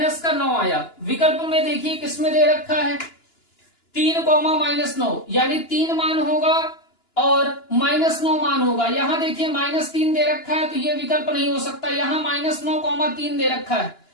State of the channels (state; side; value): late; right; 2.9 ms